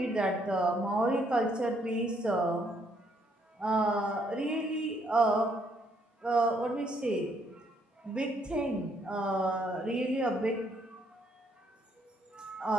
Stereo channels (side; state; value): both; normal; correlation 0.70